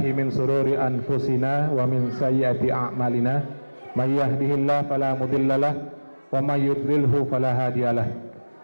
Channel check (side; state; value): both; inverted; correlation -1.00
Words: min sururi anfusina wa min sayyiati a'malina may yahdihillahu fala mudhillalah wa may yudlilhu fala hadiyalah.